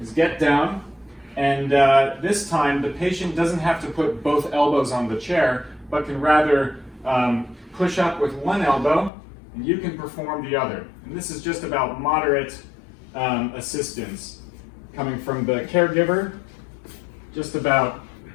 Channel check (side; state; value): right; drops out; at 9.1 s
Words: is get down, and this time the patient doesn't have to put both elbows on the chair, but can rather push up with one elbow, and you can perform the other. And this is just about moderate assistance coming from the caregiver, just about